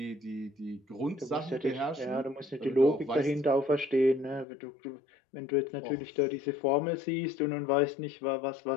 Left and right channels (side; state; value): right; drops out; at 4.5 s